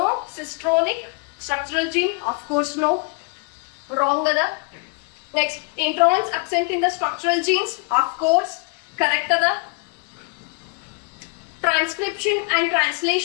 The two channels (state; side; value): quieter; right; 31.8 dB